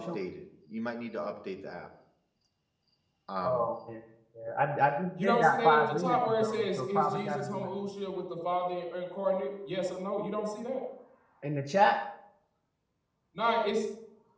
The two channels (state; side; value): identical; both; correlation 1.00